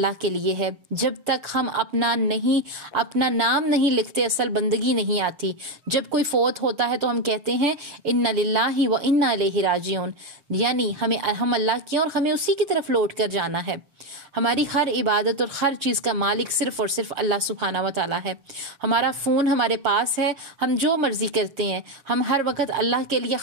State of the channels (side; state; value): left; late; 6.6 ms